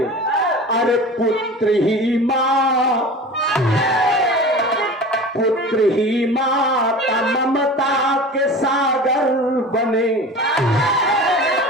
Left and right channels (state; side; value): normal; both; correlation 0.36